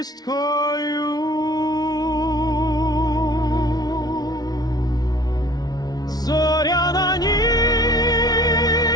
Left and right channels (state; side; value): late; right; 0.19 ms